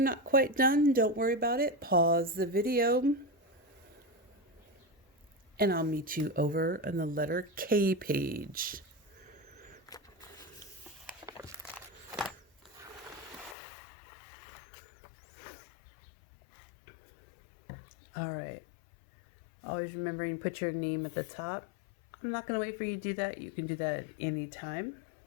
quite done, don't worry about it. Pause the video. And I'll meet you over on the letter K page. All right. Always remembering to put your name at the top. I'm not going to wait for you to do that. You can do that at any time.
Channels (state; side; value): drops out; right; at 13.6 s